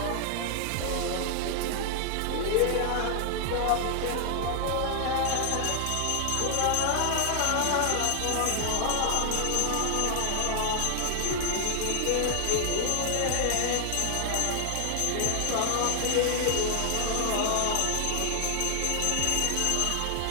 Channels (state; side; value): different; both; correlation 0.00